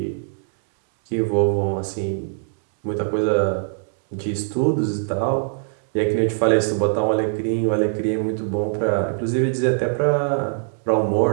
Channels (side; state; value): left; silent; digital silence